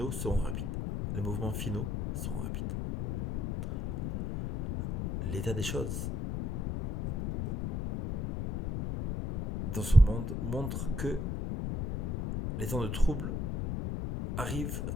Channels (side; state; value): left; noise; rumble, 2 dB below the sound